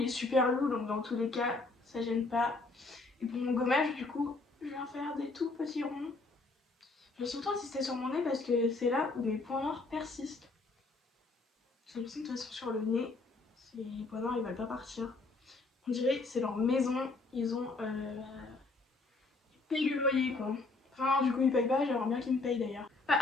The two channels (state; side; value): quieter; right; 3.5 dB